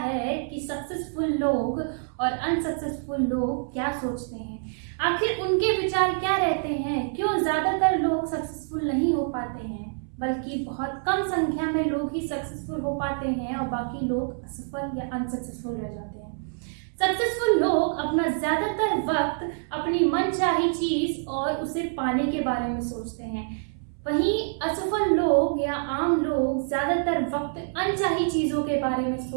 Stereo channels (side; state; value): left; silent; 61 dB below the other